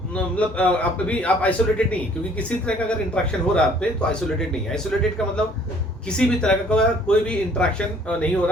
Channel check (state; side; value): normal; both; correlation 0.58